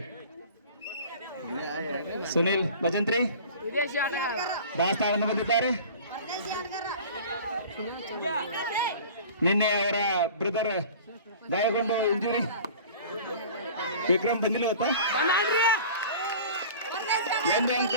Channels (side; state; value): both; inverted; correlation -0.42